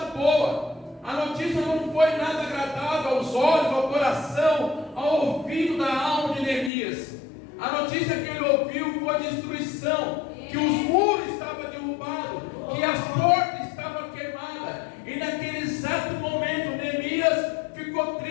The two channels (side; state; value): right; drops out; at 6.7 s